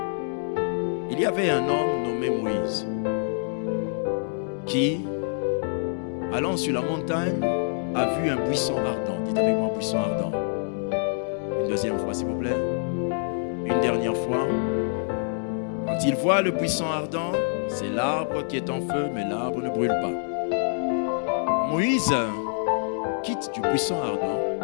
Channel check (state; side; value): silent; right; 61 dB below the other